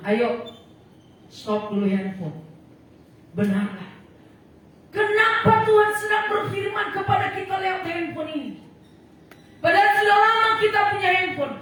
ayo stop dulu handphone. Benarlah. Kenapa Tuhan sedang berfirman kepada kita lewat handphone ini? Padahal sudah lama kita punya handphone,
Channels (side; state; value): both; identical; correlation 1.00